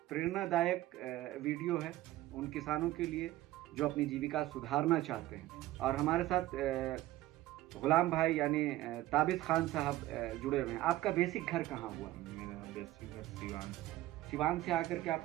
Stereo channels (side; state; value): left; quieter; 15.9 dB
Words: प्रेरणादायक वीडियो है उन किसानों के लिए जो अपनी जीविका सुधारना चाहते हैं। और हमारे साथ गुलाम भाई यानी ताबिश खान साहब जुड़े हुए हैं। आपका बेसिक घर कहाँ हुआ? मेरा बेसिक घर सिवान था। सिवान से आकर के